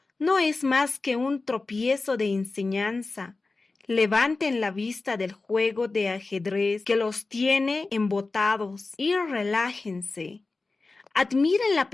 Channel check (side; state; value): right; quieter; 3.6 dB